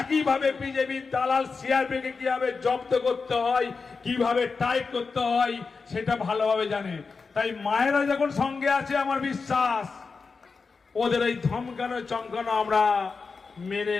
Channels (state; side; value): quieter; right; 4.7 dB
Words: বিজেপি দালাল সিআরপিএফকে কিভাবে জব্দ করতে হয়, কিভাবে টাইপ করতে হয় সেটা ভালোভাবে জানে। তাই মায়েরা যখন সঙ্গে আছে, আমার বিশ্বাস ওদের এই ধমকানো চমকানো আমরা মেনে